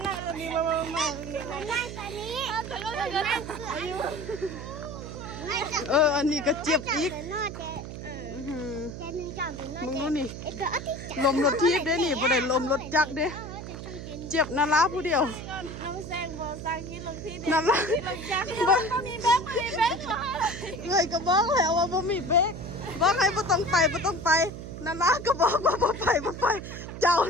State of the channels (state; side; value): noise; right; hum, 9 dB below the sound